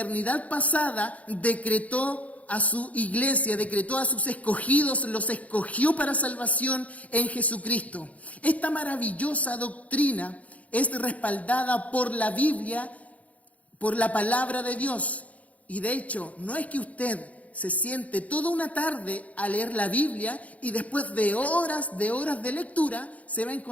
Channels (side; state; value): right; late; 0.069 ms